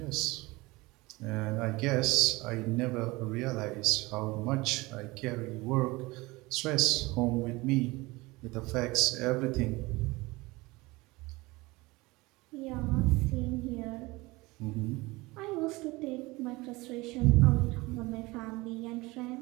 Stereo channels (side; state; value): left; quieter; 22.3 dB